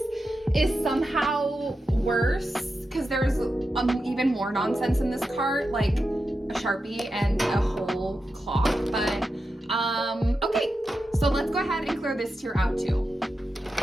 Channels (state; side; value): normal; both; correlation 0.89